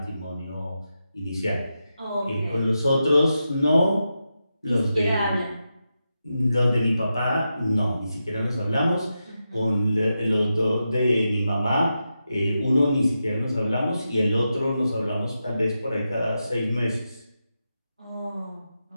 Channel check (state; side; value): inverted; both; correlation -0.88